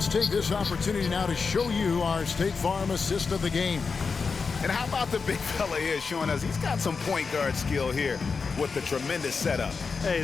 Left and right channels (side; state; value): right; quieter; 5.0 dB